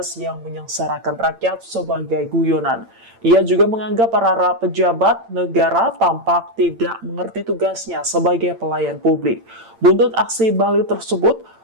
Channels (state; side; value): late; left; 8.8 ms